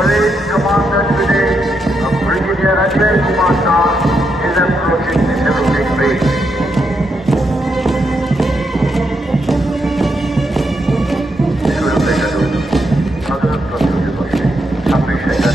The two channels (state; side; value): normal; both; correlation 0.81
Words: commander today, Brigadier Ajay Kumar Shah, is approaching the saluting base.